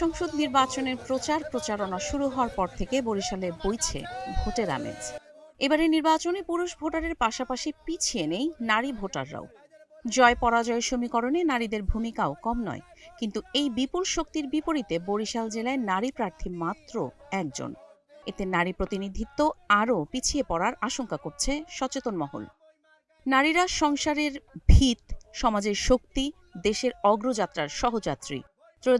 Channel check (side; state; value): both; identical; correlation 1.00